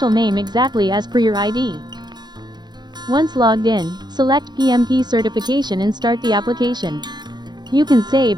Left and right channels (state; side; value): late; left; 0.21 ms